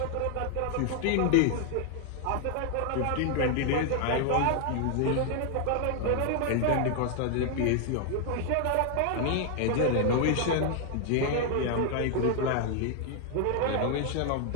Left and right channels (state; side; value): different; both; correlation 0.00